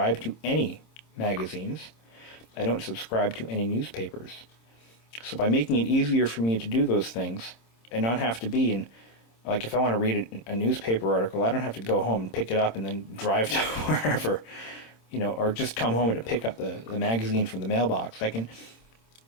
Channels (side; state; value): right; late; 26 ms